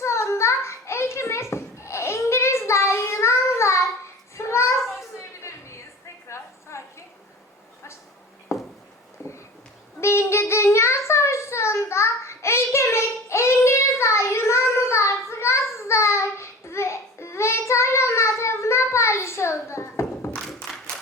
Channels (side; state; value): both; normal; correlation 0.38